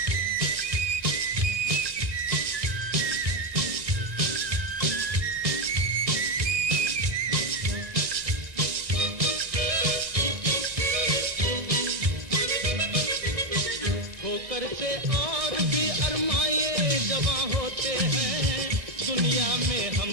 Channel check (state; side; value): late; left; 1.9 ms